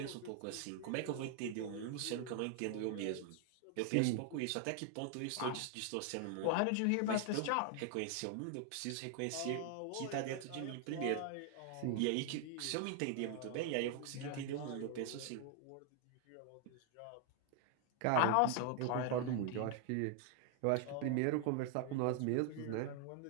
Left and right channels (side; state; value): both; different; correlation 0.00